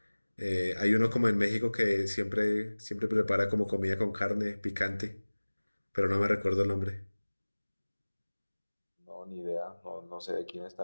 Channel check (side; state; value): both; inverted; correlation -1.00